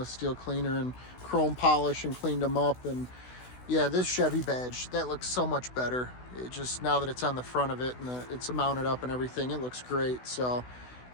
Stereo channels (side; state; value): right; late; 16 ms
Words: steel cleaner and chrome polish and cleaned them up. And yeah, this Chevy badge, that looks so much better. It just, now that it's on the front of it and it's mounted up and everything, it looks great. So